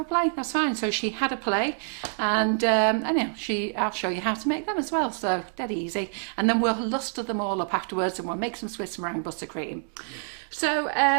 play, that's fine. So she had a play, and anyhow, I'll show you how to make them as well. So dead easy. And then we'll luster them all up afterwards, and we'll make some Swiss meringue buttercream. So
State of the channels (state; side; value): silent; left; 57 dB below the other